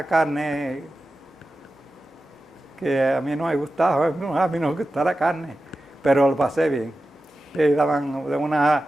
carne que a mí no me gustaba, a mí no me gusta la carne, pero lo pasé bien. Y daban unas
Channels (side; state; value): both; normal; correlation 0.93